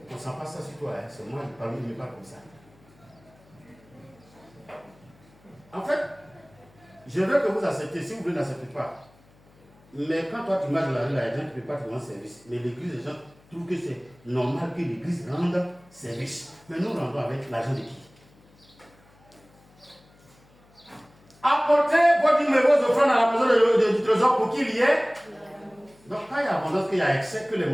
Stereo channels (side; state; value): left; noise; hum, 29 dB below the sound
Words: ne sent pas ça sur toi. Hein. C'est moi, il ne me parle comme ça. En fait, je veux que vous acceptez. Si vous ne l'acceptez pas, mais quand toi tu marches dans la rue, les gens ne peuvent pas te rendre service. Mais l'église, les gens trouvent que c'est normal que l'église rende service. Mais nous rendons avec l'argent de qui? Apportez vos numéros offrandes à la maison du trésor pour qu'il y ait. Donc quand il y a abondance, qu'il y a excès, que les